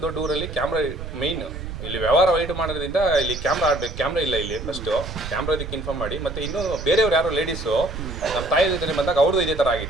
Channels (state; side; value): noise; right; rumble, 8 dB below the sound